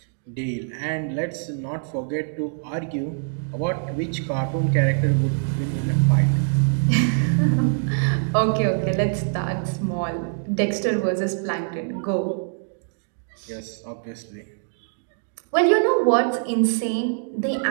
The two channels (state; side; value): silent; left; digital silence